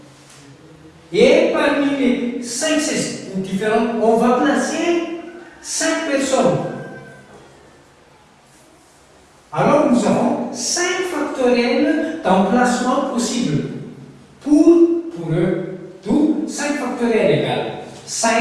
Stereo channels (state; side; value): identical; both; correlation 1.00